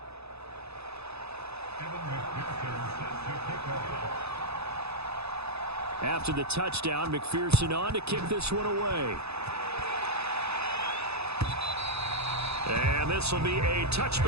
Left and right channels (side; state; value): left; late; 0.79 ms